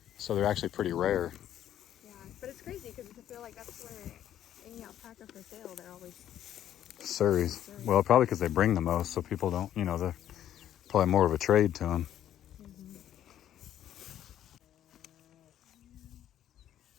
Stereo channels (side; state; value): right; quieter; 11.2 dB